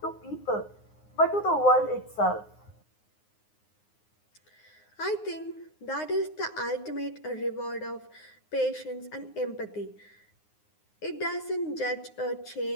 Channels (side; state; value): right; late; 9.6 ms